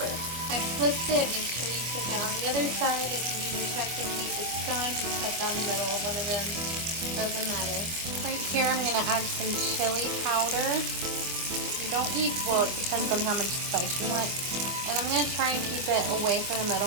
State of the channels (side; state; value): left; late; 25 ms